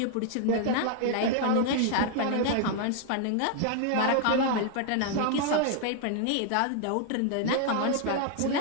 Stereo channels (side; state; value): both; different; correlation 0.00